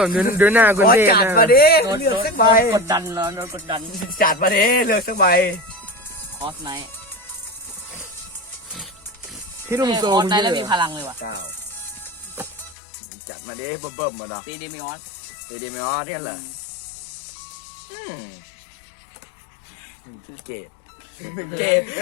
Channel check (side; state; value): right; drops out; at 12.8 s